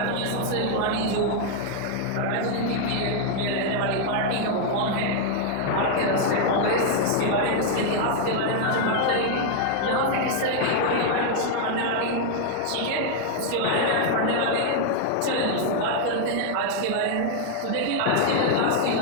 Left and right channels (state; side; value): different; both; correlation 0.00